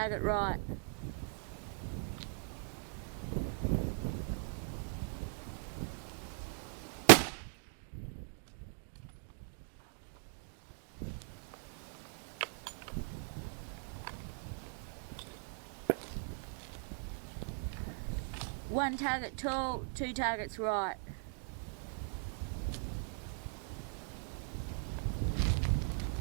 right. One target tall, 2 targets right.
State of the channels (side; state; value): left; silent; 51 dB below the other